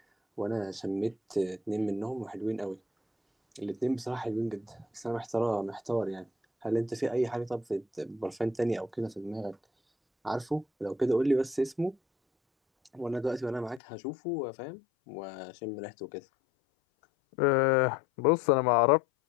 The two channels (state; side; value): drops out; right; at 13.8 s